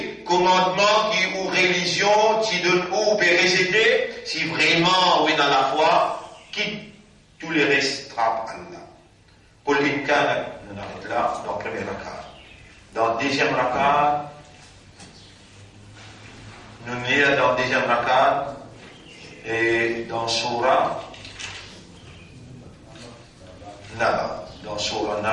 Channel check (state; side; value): identical; both; correlation 1.00